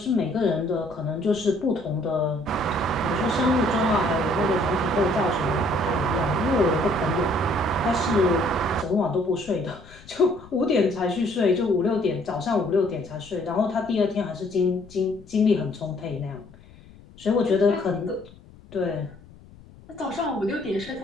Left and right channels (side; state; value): left; noise; rumble, 22 dB below the sound